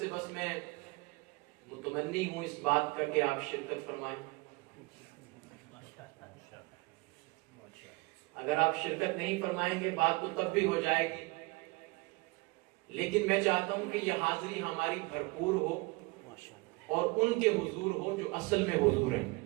بس میں متمنی ہوں اس بات کا کہ آپ شرکت فرمائیں۔ اگر آپ شرکت نہیں فرمائیں گے بات تو تب بھی ہو جائے گی، لیکن میں چاہتا ہوں کہ یہ حاضری ہماری بھرپور ہو اور ان کے حضور ہو جو اصل میں حضور ہیں،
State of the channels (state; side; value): quieter; left; 25.1 dB